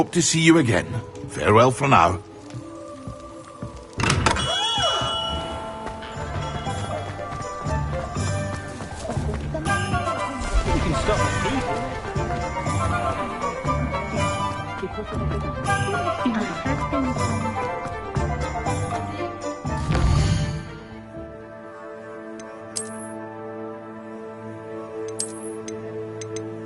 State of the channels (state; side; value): identical; both; correlation 1.00